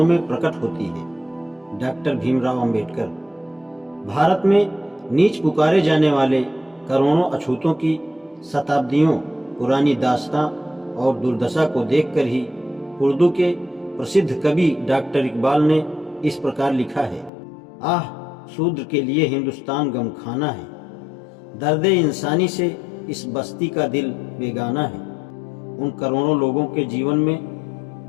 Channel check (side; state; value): right; drops out; at 17.3 s